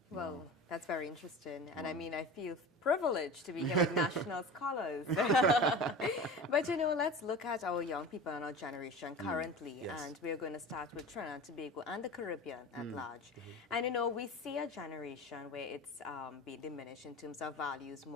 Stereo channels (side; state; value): both; normal; correlation 0.33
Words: Well, that's very interesting. And I mean, I feel privileged to be here with national scholars. But, you know, let's look at our young people and our generation currently. And we're going to start with Trinidad and Tobago and the Caribbean at large. And, you know, we see a generation where it's being diminished in terms of values,